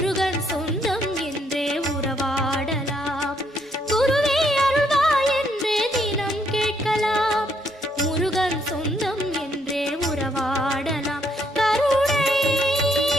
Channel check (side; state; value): both; normal; correlation 0.72